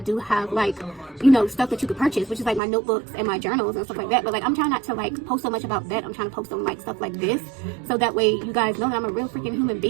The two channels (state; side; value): drops out; left; at 2.6 s